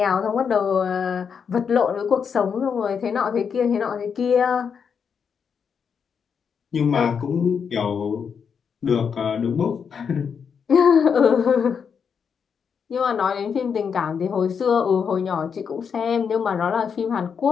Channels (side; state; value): right; quieter; 6.7 dB